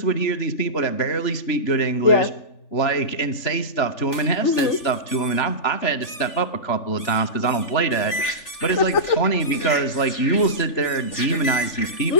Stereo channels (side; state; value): right; late; 3.4 ms